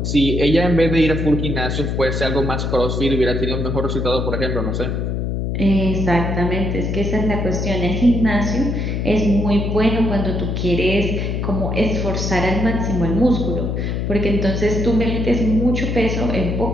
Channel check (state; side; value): noise; left; hum, 1 dB below the sound